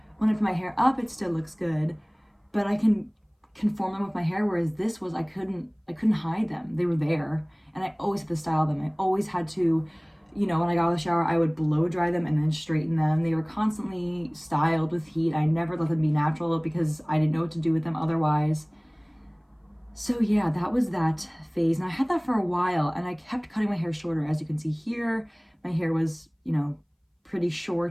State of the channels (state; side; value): identical; both; correlation 1.00